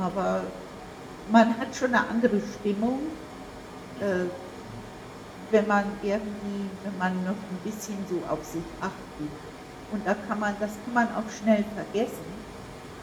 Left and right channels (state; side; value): identical; both; correlation 1.00